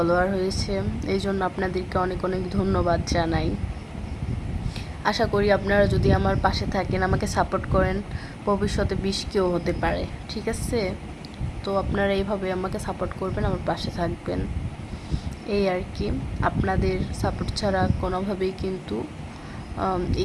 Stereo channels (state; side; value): identical; both; correlation 1.00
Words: হয়েছে, এই জন্য আপনাদেরকে অনেক অনেক ধন্যবাদ জানাই। আশা করি আপনারা যদি আমার পাশে থাকেন, আমাকে সাপোর্ট করেন, ভবিষ্যতে 20Kও হতে পারে, ঠিক আছে? তো আপনারা এইভাবে আমাকে সাপোর্ট করবেন, আমার পাশে থাকবেন, এই আর কি। আপনাদের সাপোর্ট ছাড়া কোনোভাবেই কিন্তু